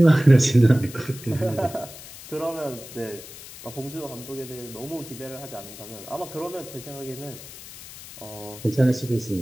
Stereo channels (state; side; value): noise; left; hiss, 15 dB below the sound